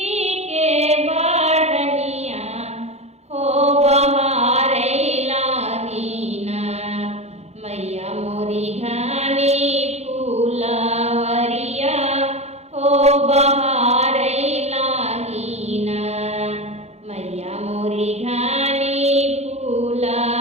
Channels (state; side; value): late; left; 0.31 ms